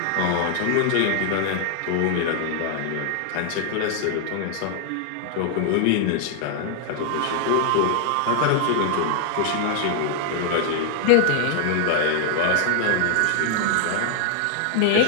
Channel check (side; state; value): both; different; correlation 0.00